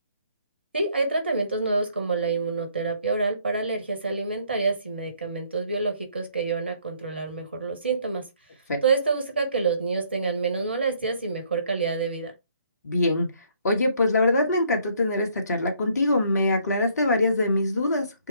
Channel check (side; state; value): both; inverted; correlation -0.64